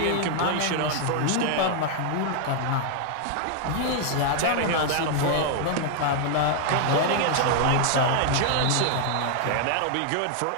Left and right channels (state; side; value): different; both; correlation 0.00